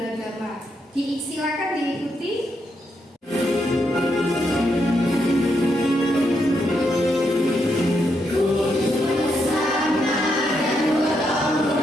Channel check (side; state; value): both; normal; correlation 0.80